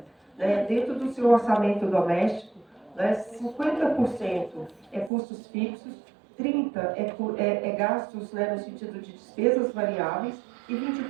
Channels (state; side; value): drops out; left; at 5.1 s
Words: né? Dentro do seu orçamento doméstico, né, 50% é custos fixos, 30% é gastos, né, no sentido de despesas variáveis e